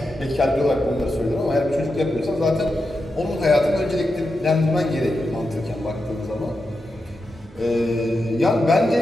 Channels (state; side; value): normal; both; correlation 0.88